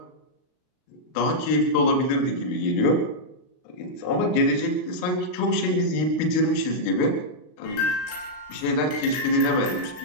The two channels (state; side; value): late; right; 39 ms